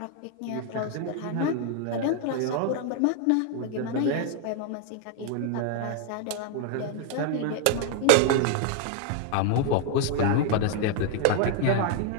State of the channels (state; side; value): different; both; correlation 0.00